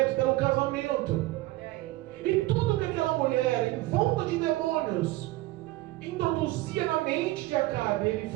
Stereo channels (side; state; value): left; quieter; 18.6 dB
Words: pelo casamento. E tudo que aquela mulher, envolta de demônios, introduzia na mente de Acabe, ele